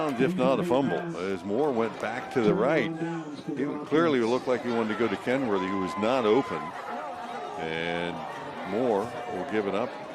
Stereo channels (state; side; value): identical; both; correlation 1.00